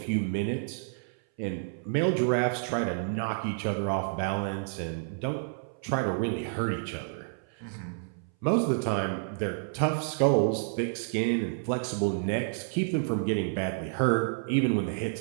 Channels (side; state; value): left; silent; 58 dB below the other